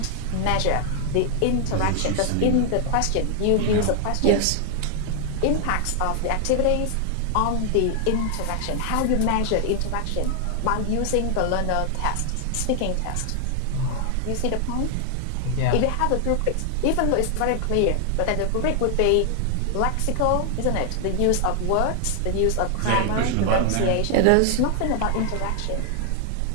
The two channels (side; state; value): both; different; correlation 0.00